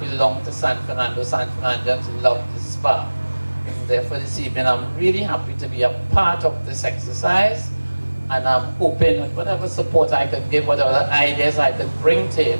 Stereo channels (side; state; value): both; inverted; correlation -1.00